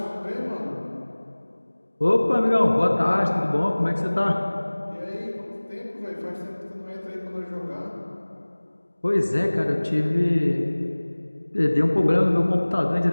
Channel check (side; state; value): both; inverted; correlation -1.00